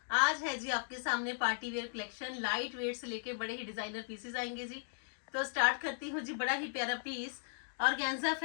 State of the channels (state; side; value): silent; right; digital silence